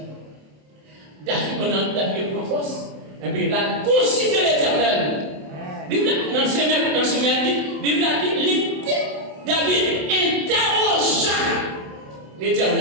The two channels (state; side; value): late; left; 27 ms